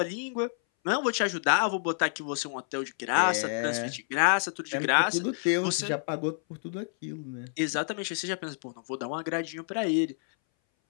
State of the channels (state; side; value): silent; right; 59 dB below the other